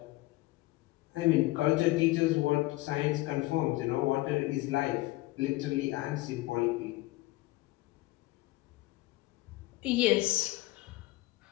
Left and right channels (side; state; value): right; quieter; 19.7 dB